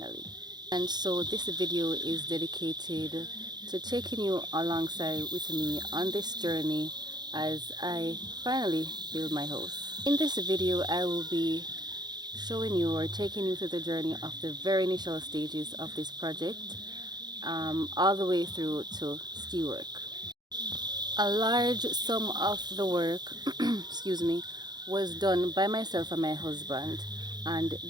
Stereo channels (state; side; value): late; left; 0.20 ms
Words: And so this video is dedicated to taking you alongside with me on this journey as I finally build my house. In this video, I will be showing you or taking you through the journey of the very initial stages of this project, all the way through to steel work. A large sum of the work, excuse me, was done by myself and my husband, and